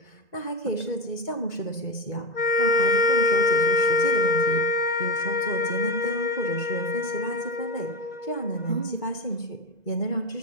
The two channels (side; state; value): right; late; 2.0 ms